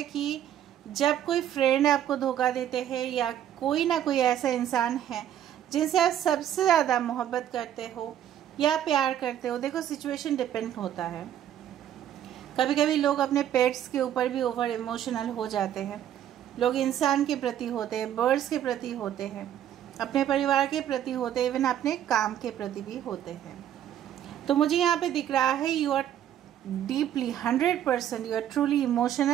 कि जब कोई फ्रेंड आपको धोखा देते हैं या कोई ना कोई ऐसा इंसान है जिनसे आप सबसे ज़्यादा मोहब्बत करते हो या प्यार करते हो। देखो सिचुएशन डिपेंड होता है। कभी कभी लोग अपने पेट्स के ऊपर भी ओवर इमोशनल हो जाते हैं। लोग इंसान के प्रति होते हैं, बर्ड्स के प्रति होते हैं, अपने परिवार के प्रति होते हैं, इवन अपने काम के प्रति भी होते हैं। तो मुझे यहाँ पे दिख रहा है you are deeply 100% you are truly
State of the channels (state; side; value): quieter; left; 10.7 dB